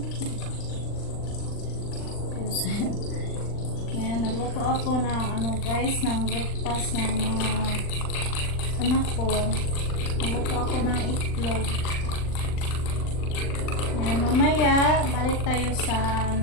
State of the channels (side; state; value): right; late; 39 ms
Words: Yan, nagluto ako ng guys, ng breakfast ng mga anak ko. Nagluto ako ng itlog. Yan, mamaya, balik tayo sa